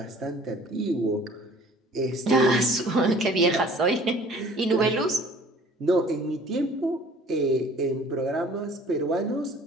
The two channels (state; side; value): normal; both; correlation 0.51